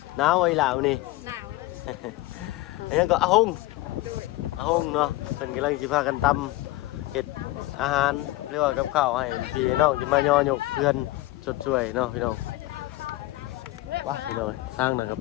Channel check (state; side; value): quieter; right; 18.0 dB